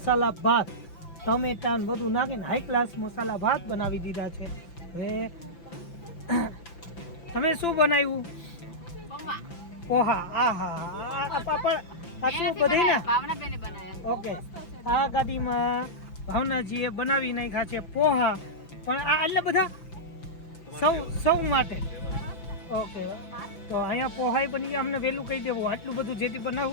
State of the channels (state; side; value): late; right; 5.9 ms